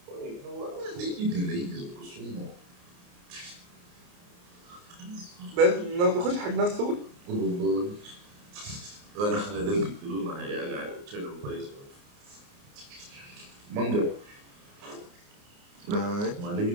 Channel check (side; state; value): left; late; 29 ms